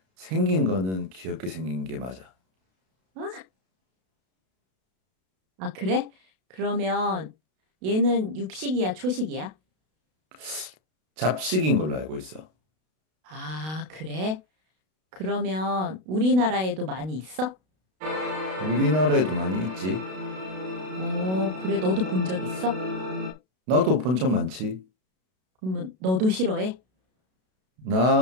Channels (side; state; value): left; late; 32 ms